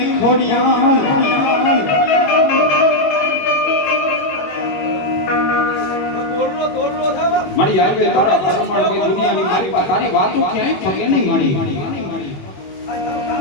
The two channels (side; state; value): right; late; 21 ms